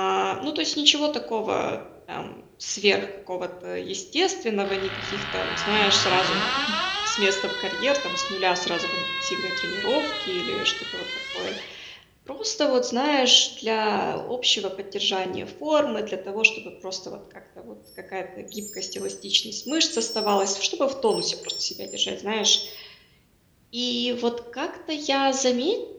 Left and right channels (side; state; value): both; identical; correlation 1.00